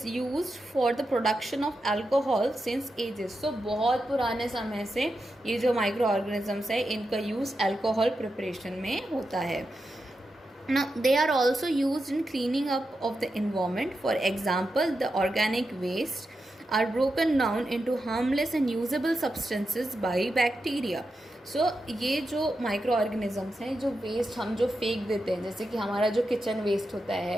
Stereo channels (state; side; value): normal; both; correlation 0.88